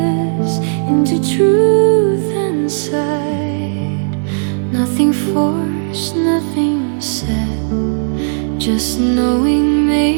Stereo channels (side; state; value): left; silent; digital silence